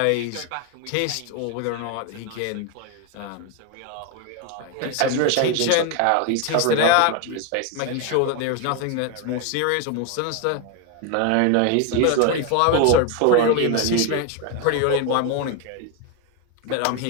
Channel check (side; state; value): both; different; correlation 0.01